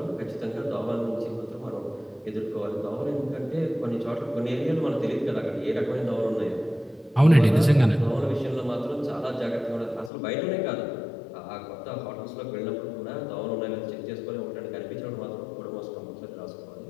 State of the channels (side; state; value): right; drops out; at 10.1 s